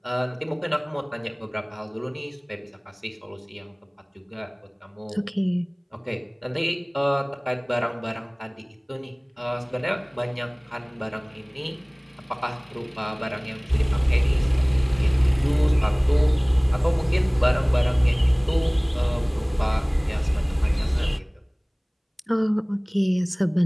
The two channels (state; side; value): identical; both; correlation 1.00